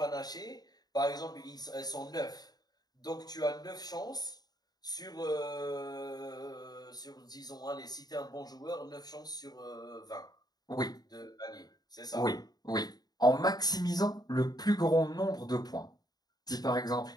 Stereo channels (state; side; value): late; right; 0.19 ms